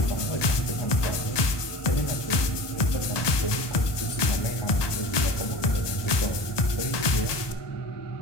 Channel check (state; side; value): late; right; 1.2 ms